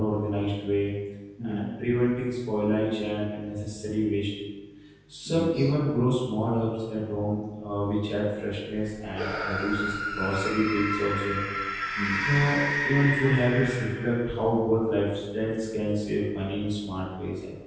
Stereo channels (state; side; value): identical; both; correlation 1.00